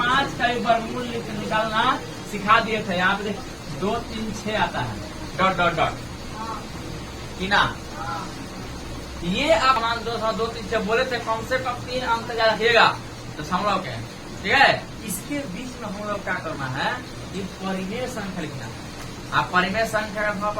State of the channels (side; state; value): both; identical; correlation 1.00